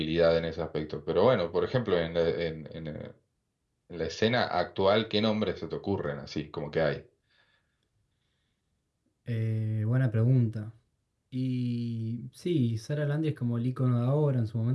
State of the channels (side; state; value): both; identical; correlation 1.00